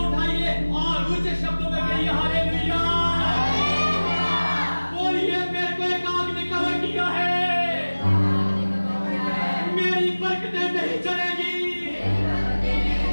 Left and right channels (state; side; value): inverted; both; correlation -1.00